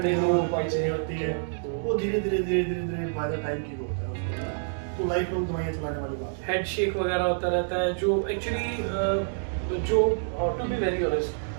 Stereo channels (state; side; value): silent; left; digital silence